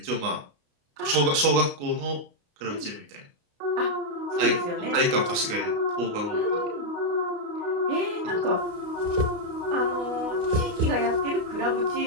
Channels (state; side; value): late; left; 29 ms